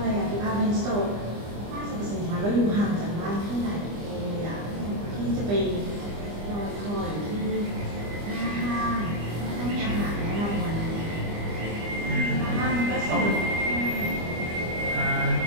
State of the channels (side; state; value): left; late; 25 ms